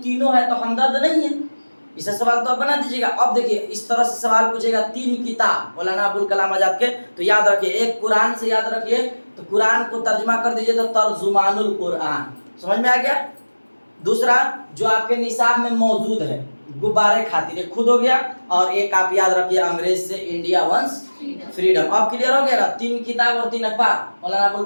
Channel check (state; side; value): inverted; both; correlation -1.00